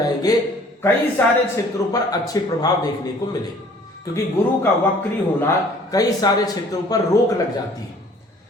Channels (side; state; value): both; normal; correlation 0.54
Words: कई सारे क्षेत्रों पर अच्छे प्रभाव देखने को मिले क्योंकि गुरु का वक्री होना कई सारे क्षेत्रों पर रोक लग जाती है।